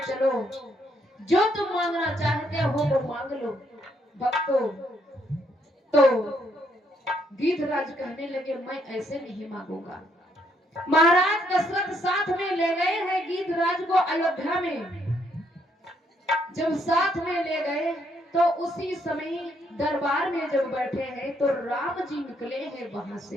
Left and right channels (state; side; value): normal; both; correlation 0.72